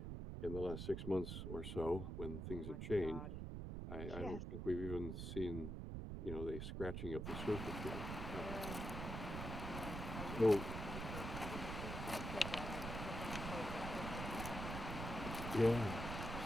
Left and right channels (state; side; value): noise; right; rumble, 4 dB below the sound